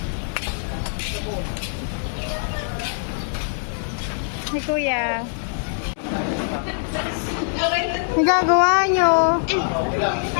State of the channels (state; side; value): silent; right; digital silence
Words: Hey, kuya. Nagagawa nyo?